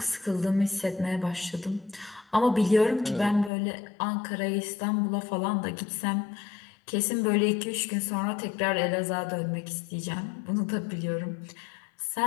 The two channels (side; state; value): right; drops out; at 3.5 s